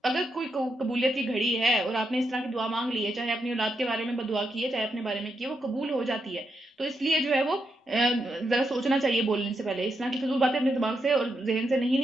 اگر کوئی قبولیت کی گھڑی ہے اور آپ نے اس طرح کی دعا مانگ لی ہے، چاہے اپنی اولاد کے بارے میں بدعا کی ہے، چاہے اپنے بارے میں کی ہے، وہ قبول ہو جاتی ہے. تو اس لیے جو ہے وہ ذرا سوچنا چاہیے بولنے سے پہلے. اس طرح کی فضول باتیں اپنے دماغ سے اور ذہن سے نہیں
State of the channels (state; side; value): normal; both; correlation 0.82